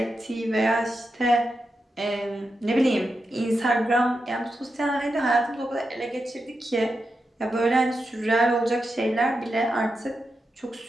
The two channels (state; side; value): normal; both; correlation 0.88